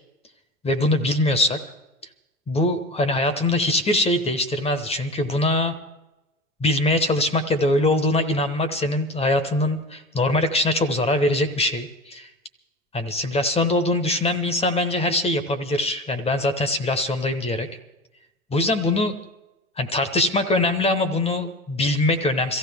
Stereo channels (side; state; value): both; normal; correlation 0.31